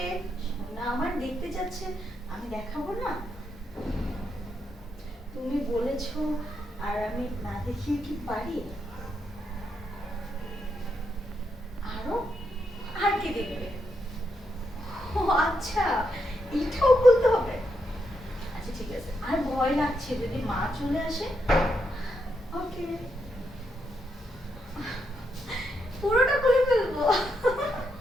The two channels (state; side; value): normal; both; correlation 0.81